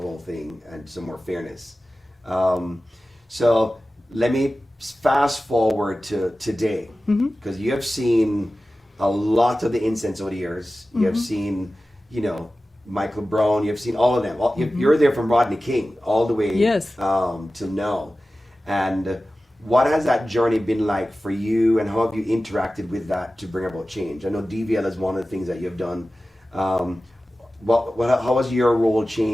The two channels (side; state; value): both; normal; correlation 0.95